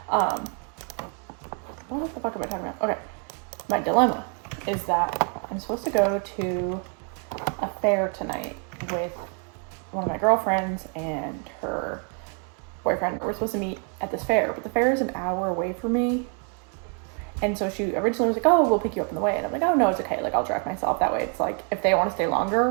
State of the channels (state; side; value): quieter; left; 39.2 dB